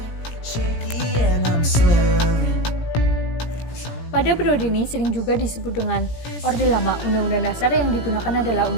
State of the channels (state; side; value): late; right; 17 ms